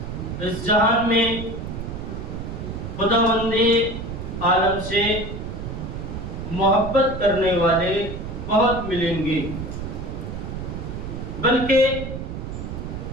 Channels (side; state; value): right; noise; rumble, 7 dB below the sound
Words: اس جہان میں خداوند عالم سے محبت کرنے والے بہت ملیں گے، بلکہ